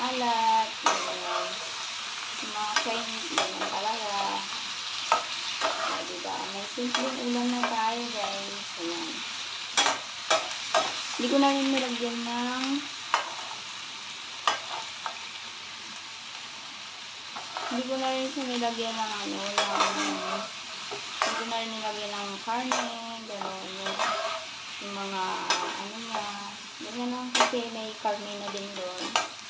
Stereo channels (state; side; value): identical; both; correlation 1.00